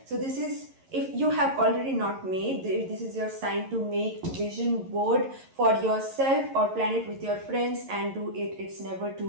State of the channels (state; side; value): late; left; 11 ms